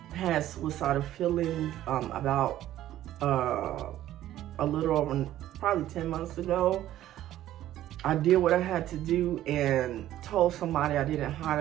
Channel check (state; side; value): quieter; left; 13.2 dB